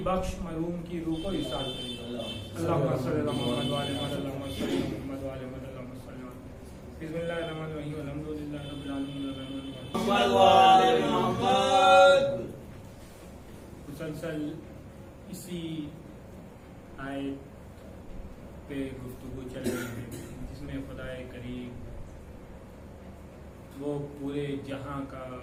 बख्श मरहूम की रूह को इरशाद करें। अल्लाहुम्मा सल्लि अला मुहम्मद व आले मुहम्मद, अल्लाहुम्मा सल्लि अला मुहम्मद व आले मुहम्मद, अल्लाहुम्मा सल्लि अला मुहम्मद। बिस्मिल्लाहिर रहमानिर रहीम, अल्हम्दुलिल्लाहि रब्बिल आलमीन, मुहम्मद व आले मुहम्मद। मुसलसल इसी आयत पे गुफ्तगू चल रही है जिसमें खुदाए करीम वो पूरे जहां का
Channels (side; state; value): both; identical; correlation 1.00